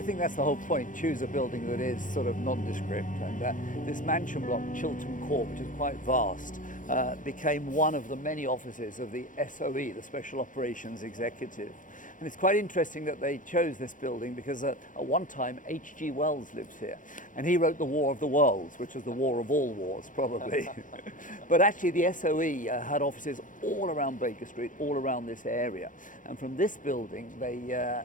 think that's the whole point. Choose a building that is sort of nondescript. And this mansion block, Chiltern Court, which is quite vast, became one of the many offices of the SOE, the Special Operations Executive. And it's quite interesting that they chose this building because at one time H.G. Wells lives here. And he wrote The War of the Worlds, which was the war of all wars, probably. But actually the SOE had offices all around Baker Street, all around this area. And from this building, they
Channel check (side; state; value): right; late; 0.38 ms